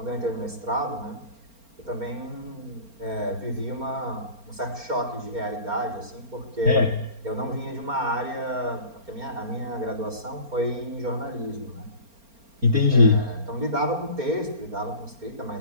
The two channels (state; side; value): late; left; 4.4 ms